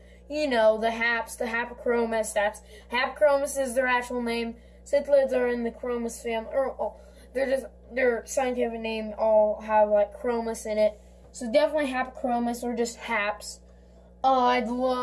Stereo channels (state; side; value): identical; both; correlation 1.00